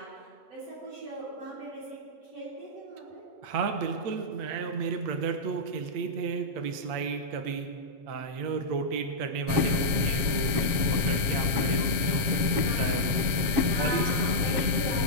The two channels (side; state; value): left; late; 7.4 ms